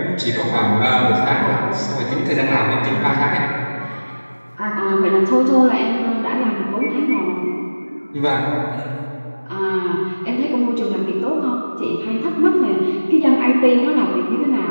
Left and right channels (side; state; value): both; inverted; correlation -1.00